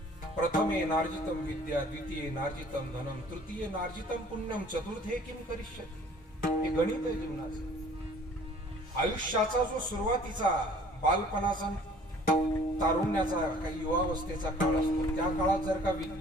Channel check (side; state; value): both; normal; correlation 0.52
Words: प्रथमे नार्जितम विद्या, द्वितीये नार्जितम धनम, तृतीये नार्जितम पुण्यम, चतुर्थे किम करिष्यति. हे गणित आहे जीवनाचं. आयुष्याचा जो सुरुवातीचा बालपणाचा तारुण्याचा काही युवावस्थेचा काळ असतो. त्या काळात जर का